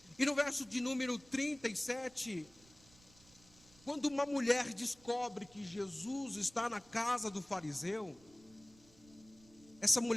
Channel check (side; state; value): right; noise; rumble, 26 dB below the sound